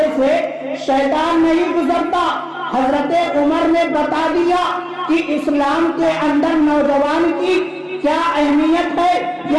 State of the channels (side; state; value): both; identical; correlation 1.00